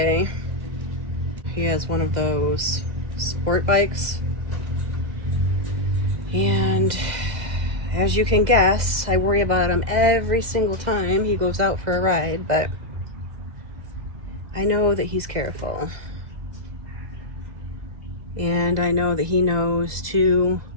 He has one of those sport bikes. And as you can guess, I worry about him every single time he goes out for a ride, but I know that he's careful. And I know that he knows to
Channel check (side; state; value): left; late; 2.0 ms